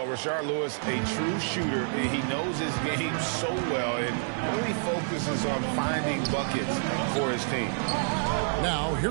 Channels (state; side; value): silent; left; digital silence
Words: Rashard Lewis, a true shooter, and he knows his game so well and really focuses on finding buckets for his team. Now,